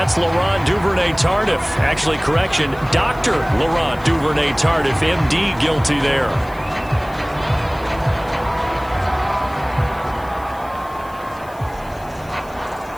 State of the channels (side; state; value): left; noise; hiss, 25 dB below the sound